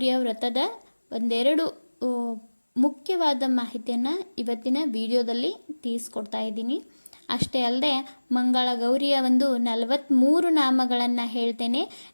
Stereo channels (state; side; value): inverted; both; correlation -1.00